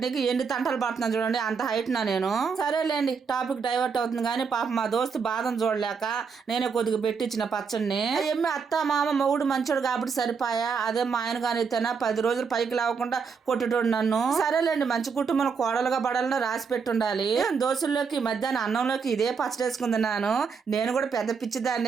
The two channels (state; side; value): quieter; left; 5.7 dB